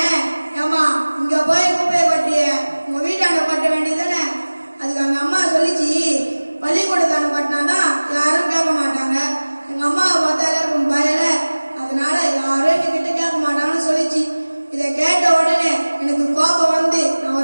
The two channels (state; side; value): inverted; both; correlation -1.00